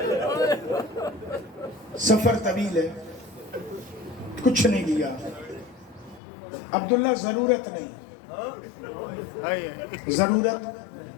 سفر طویل ہے, کچھ نہیں لیا. عبداللہ ضرورت نہیں, ضرورت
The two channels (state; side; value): drops out; right; at 6.2 s